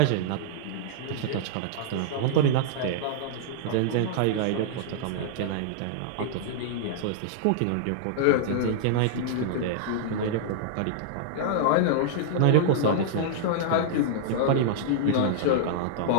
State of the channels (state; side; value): different; both; correlation -0.01